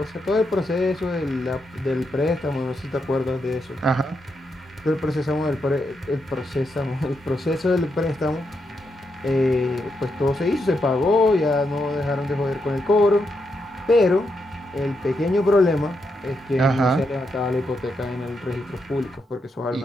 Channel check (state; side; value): normal; both; correlation 0.82